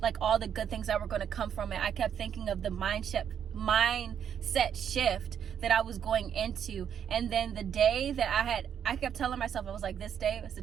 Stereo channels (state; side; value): quieter; left; 8.6 dB